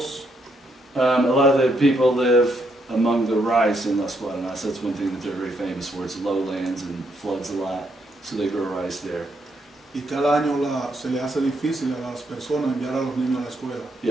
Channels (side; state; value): both; normal; correlation 0.76